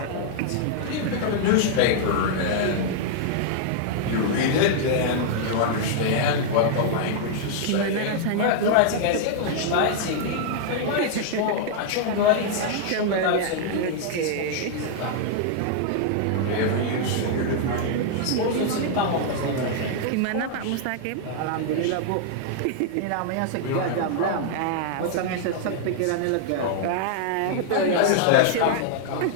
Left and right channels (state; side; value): different; both; correlation -0.01